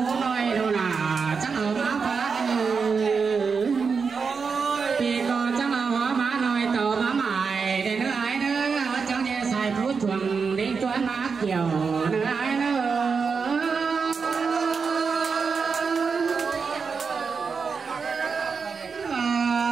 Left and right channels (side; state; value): left; quieter; 5.3 dB